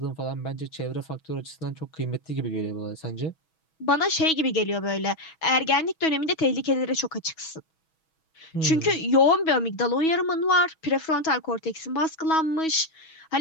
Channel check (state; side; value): late; right; 6.2 ms